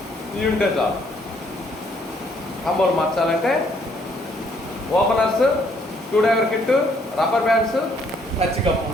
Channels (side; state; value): both; normal; correlation 0.67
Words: ఇవి ఉంటే చాలు. కాంబోలు మార్చాలంటే openers, screw driver kit, rubber bands, touch cup